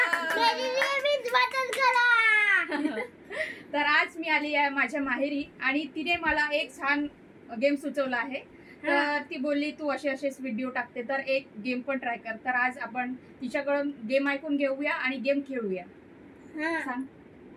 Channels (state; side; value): identical; both; correlation 1.00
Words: तर आज मी आली आहे माझ्या माहेरी आणि तिने मला एक छान गेम सुचवला आहे. तर ती बोलली तू असे असेच व्हिडिओ टाकते तर एक गेम पण ट्राय कर. तर आज आपण तिच्याकडून गेम ऐकून घेऊया आणि गेम खेळूया. सांग.